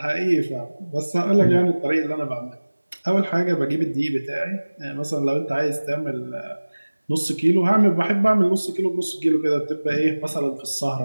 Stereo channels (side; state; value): both; inverted; correlation -1.00